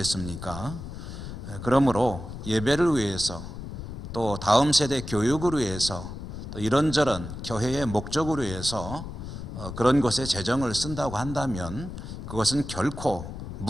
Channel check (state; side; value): noise; left; rumble, 9 dB below the sound